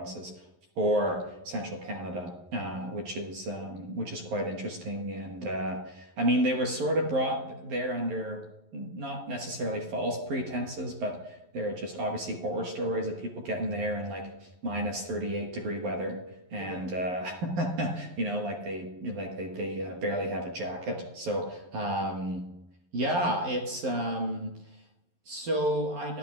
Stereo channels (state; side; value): late; left; 11 ms